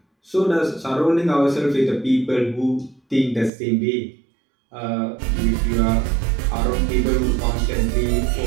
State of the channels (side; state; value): left; drops out; at 3.5 s